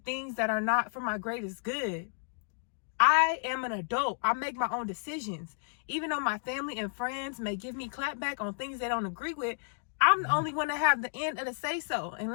that are not for my greatest good. I am an adult. I make my own decisions. Even though my family and friends may give me clapback on things they don't agree with, I'm the only one to have the end of the say so.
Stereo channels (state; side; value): silent; right; digital silence